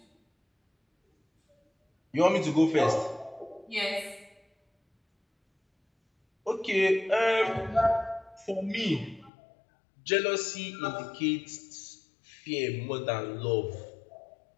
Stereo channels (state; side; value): drops out; right; at 9.3 s